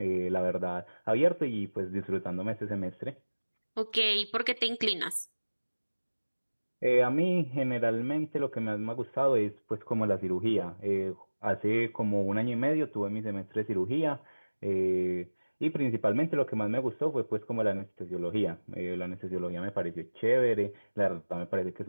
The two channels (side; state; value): both; inverted; correlation -1.00